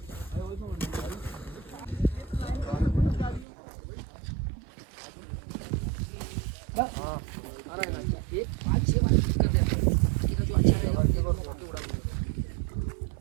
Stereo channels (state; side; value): drops out; left; at 3.5 s